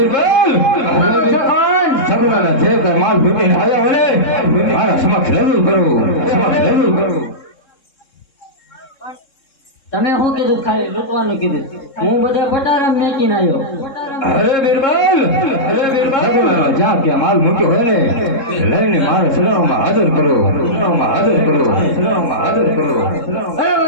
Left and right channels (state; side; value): late; right; 3.7 ms